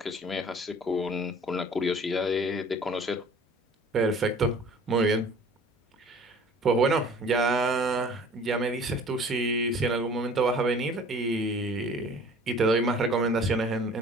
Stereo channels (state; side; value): normal; both; correlation 0.49